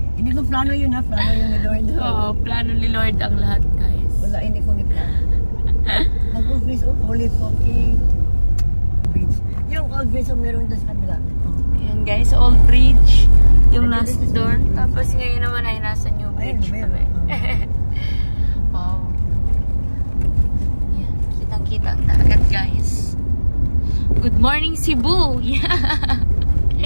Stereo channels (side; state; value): both; inverted; correlation -1.00